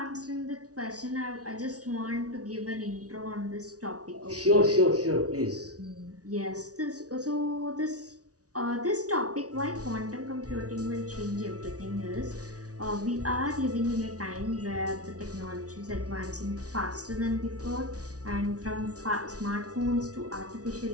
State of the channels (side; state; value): left; late; 0.68 ms